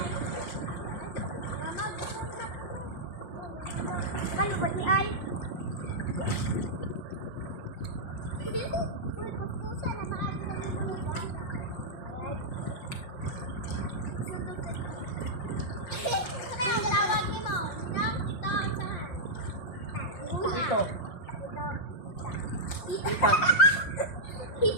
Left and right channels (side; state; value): right; late; 5.7 ms